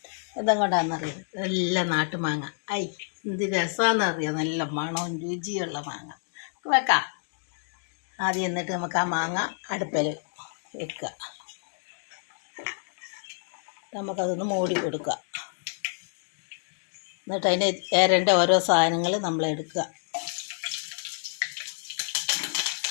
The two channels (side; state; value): right; silent; digital silence